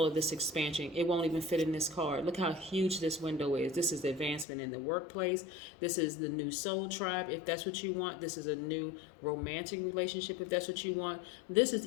of this expansion. It won't even fit in this card. Look how huge this window is. This is the advancement in the workplace. This is the new soul tribe, if that's what you want. This is a new romantic relationship, if that's what you want. This is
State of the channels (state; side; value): drops out; right; at 4.5 s